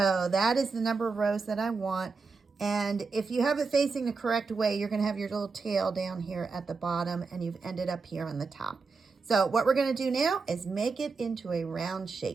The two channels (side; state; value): left; quieter; 4.5 dB